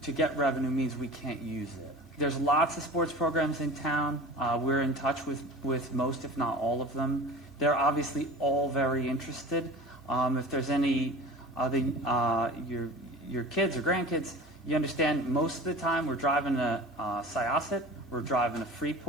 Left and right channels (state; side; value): normal; both; correlation 0.37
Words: to get revenue means we can't use it. There's lots of sports programs in town. We're in touch with most, if not all of them. They're obviously all very interested. If there's any other your kids or grandkids, you understand most of the time we're driving to Syosset, we're driving to